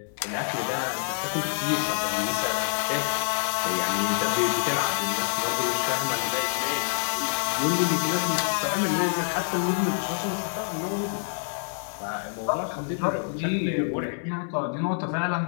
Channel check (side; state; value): right; silent; digital silence